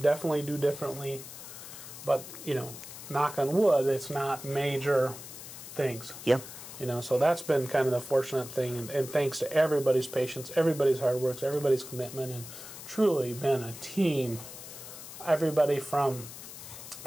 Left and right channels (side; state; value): left; noise; hiss, 13 dB below the sound